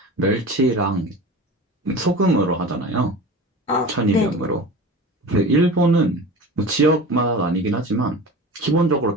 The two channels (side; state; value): both; normal; correlation 0.34